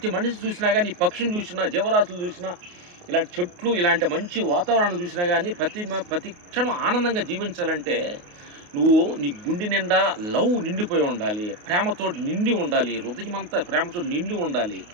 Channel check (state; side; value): late; left; 28 ms